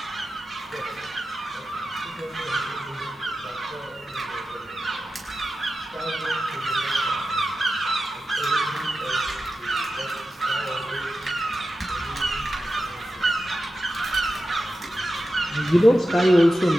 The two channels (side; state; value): both; normal; correlation 0.92